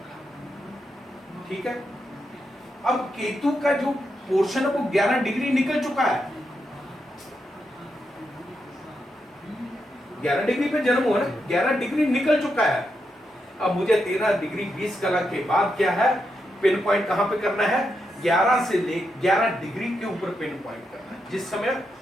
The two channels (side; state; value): both; normal; correlation 0.84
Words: का, ठीक है। अब केतु का जो पोर्शन है वो 11 डिग्री निकल चुका है। 11 डिग्री पे जन्म हुआ ना, 11 डिग्री निकल चुका है। अब मुझे 13 डिग्री 20 कलर के बाद क्या है, पिन पॉइंट कहां पे करना है? 11 से ले 11 डिग्री के ऊपर पिन पॉइंट करना है। जिस समय,